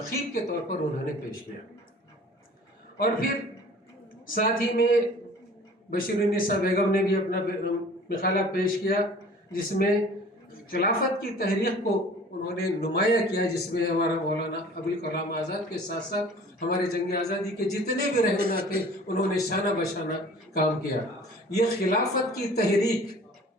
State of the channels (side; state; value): both; normal; correlation 0.47